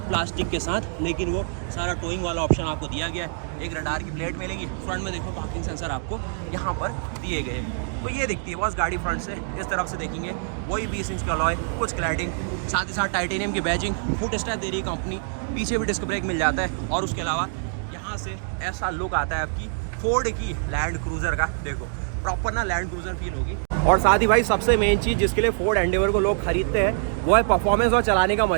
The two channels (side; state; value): left; silent; digital silence